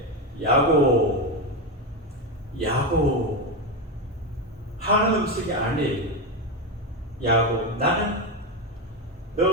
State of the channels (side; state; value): both; normal; correlation 0.12